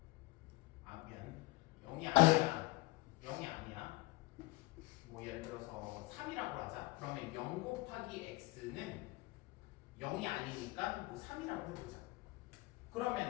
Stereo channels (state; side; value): quieter; right; 23.0 dB